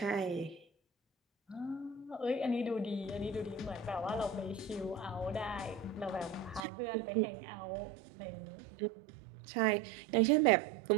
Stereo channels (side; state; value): left; drops out; at 6.7 s